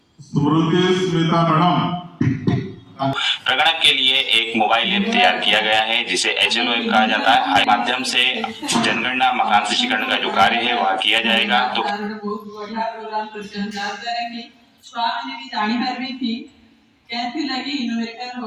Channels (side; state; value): both; identical; correlation 1.00